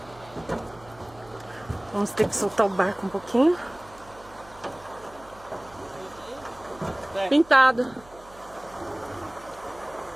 Vamos ter que soltar o barco um pouquinho. Pintado.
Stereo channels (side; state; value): right; noise; hum, 23 dB below the sound